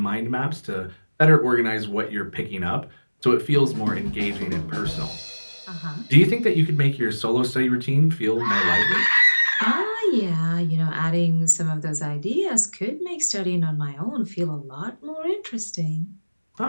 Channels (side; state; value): both; inverted; correlation -1.00